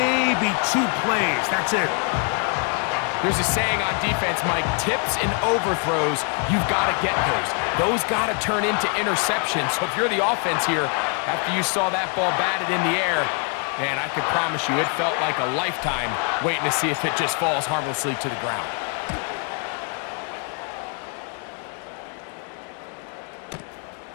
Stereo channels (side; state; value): right; quieter; 39.1 dB